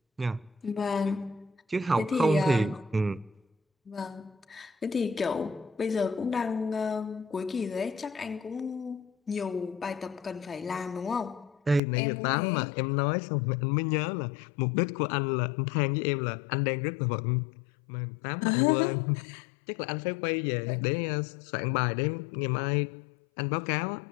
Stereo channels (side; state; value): right; drops out; at 11.8 s